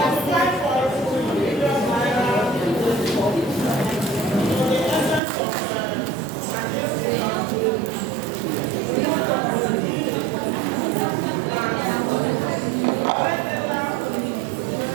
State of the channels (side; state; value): left; drops out; at 5.2 s